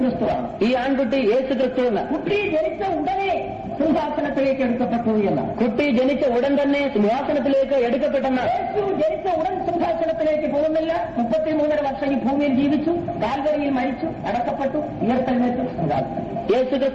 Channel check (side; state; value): both; identical; correlation 1.00